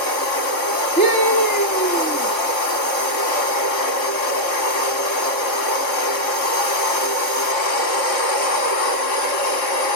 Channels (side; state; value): right; late; 3.2 ms